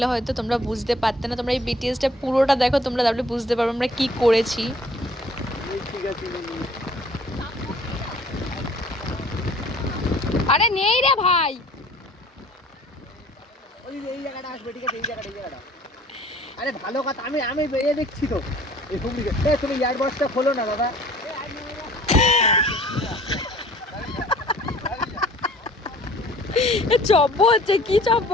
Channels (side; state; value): both; normal; correlation 0.53